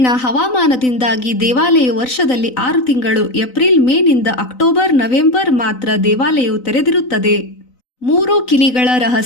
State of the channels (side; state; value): right; late; 3.9 ms